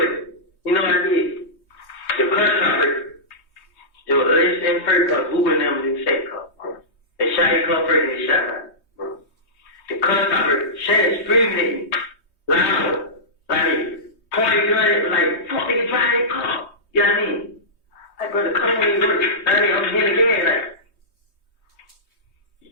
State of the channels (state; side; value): late; right; 3.2 ms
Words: you know what I did? The press conference, it was in first car, Uber and them in the second car. They shot his car first and they shot mine. The press conference, Shannon screaming at me, loud, like, pointing gun at me, like, fuck, nigga, drive that car. You know what I mean? Like, brother, come on, you work. I mean, I'm here again, like,